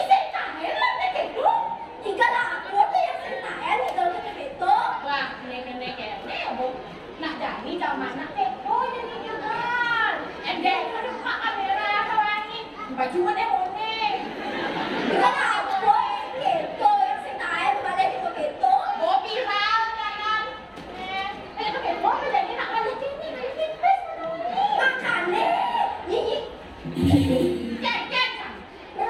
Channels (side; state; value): both; identical; correlation 1.00